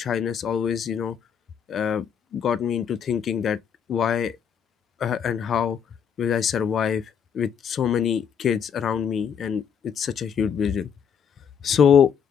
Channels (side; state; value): right; quieter; 7.6 dB